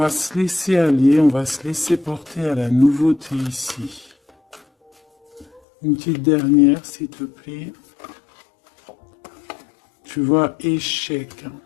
se laisser aller, on va se laisser porter à la nouveauté ici. Une petite dernière, s'il te plaît. Tu vois, échec.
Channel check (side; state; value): right; drops out; at 5.6 s